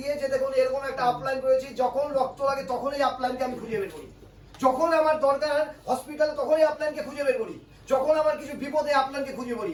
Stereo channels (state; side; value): identical; both; correlation 1.00